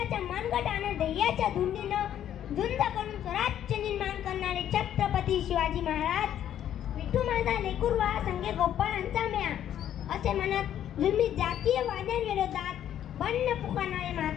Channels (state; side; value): quieter; right; 10.7 dB